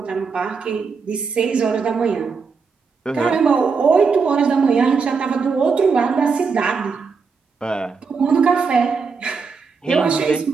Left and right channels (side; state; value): left; quieter; 5.2 dB